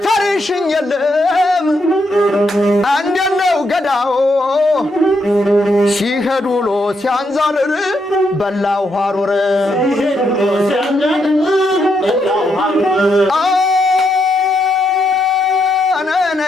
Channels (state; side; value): normal; both; correlation 0.78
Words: የለም አንደነው ገዳው ሲሄዱ ሎ ሲያንዛርር በላው ሐሩር